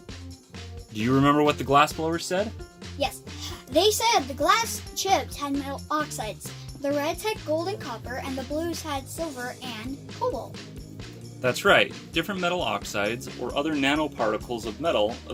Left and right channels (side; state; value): both; identical; correlation 1.00